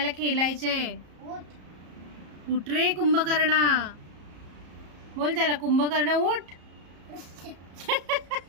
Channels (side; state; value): left; late; 34 ms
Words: खेळायचे. उठ उठ रे कुंभकर्णा. बोल त्याला, कुंभकर्ण उठ.